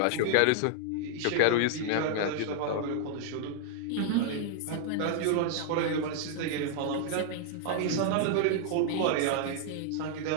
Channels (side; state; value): both; different; correlation 0.00